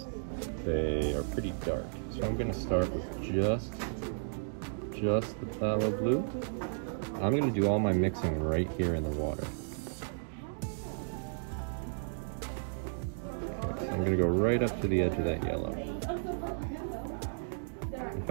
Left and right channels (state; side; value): silent; left; digital silence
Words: they are pretty dark. So I'm going to start with just the phthalo blue. I'm going to do all my mixing right here in the water. Okay, so I'm going to go right up to the edge of that yellow. If